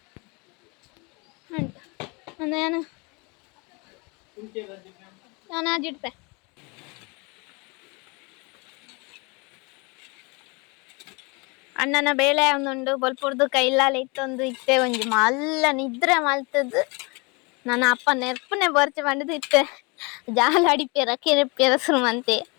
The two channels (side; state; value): right; quieter; 29.2 dB